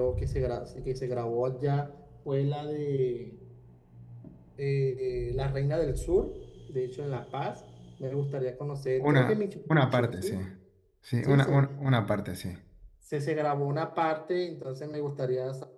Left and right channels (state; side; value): identical; both; correlation 1.00